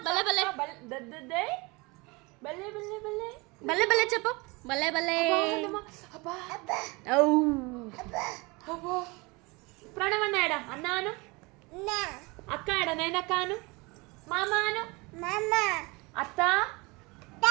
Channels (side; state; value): left; quieter; 25.9 dB